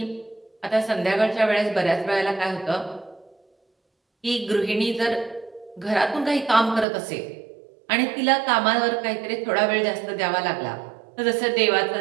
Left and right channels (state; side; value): drops out; left; at 6.9 s